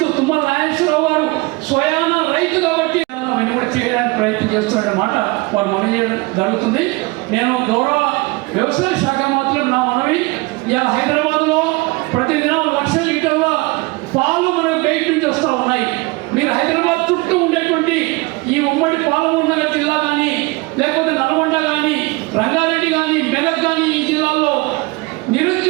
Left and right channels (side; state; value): left; quieter; 24.4 dB